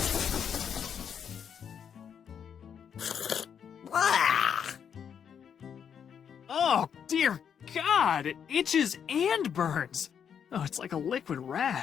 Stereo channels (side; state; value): right; quieter; 7.8 dB